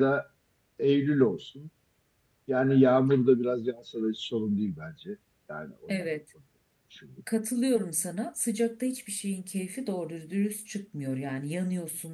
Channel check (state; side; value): identical; both; correlation 1.00